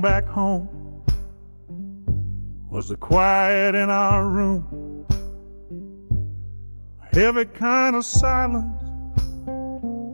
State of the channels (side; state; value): both; inverted; correlation -1.00